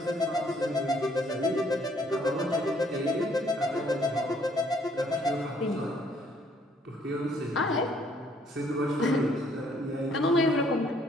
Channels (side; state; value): both; normal; correlation 0.65